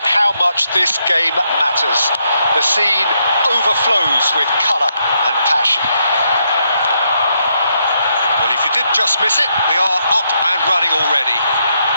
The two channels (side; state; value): both; inverted; correlation -0.78